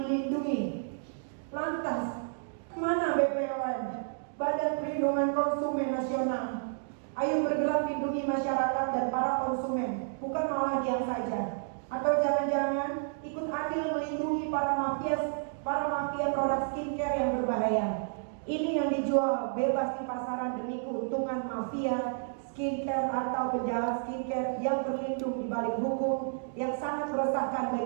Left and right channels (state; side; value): silent; left; digital silence